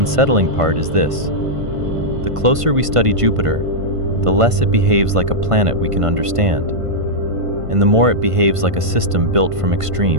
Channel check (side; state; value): left; late; 1.5 ms